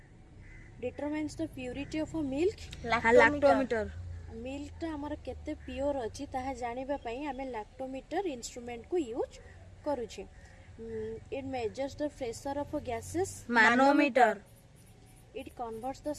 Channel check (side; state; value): both; identical; correlation 1.00